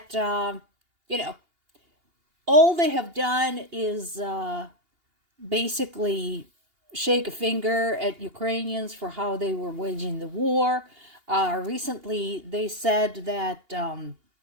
you know, all they have done is basically shake a finger at Ukrainians for how they were waging the war. Recently, they said that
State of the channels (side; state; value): left; late; 2.8 ms